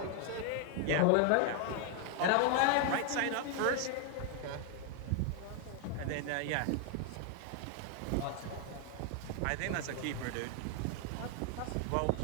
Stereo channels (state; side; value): different; both; correlation 0.00